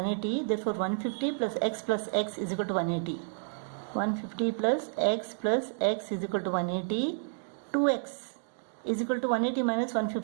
Therefore, 150 plus x is equal to 180. 150 plus x is equal to 180. 2x is equal to 180 minus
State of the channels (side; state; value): left; silent; digital silence